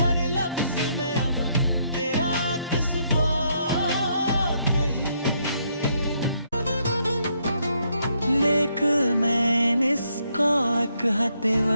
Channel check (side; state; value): both; inverted; correlation -0.74